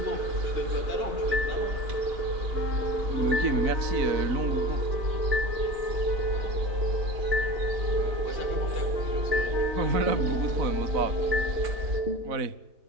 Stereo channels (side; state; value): left; late; 3.9 ms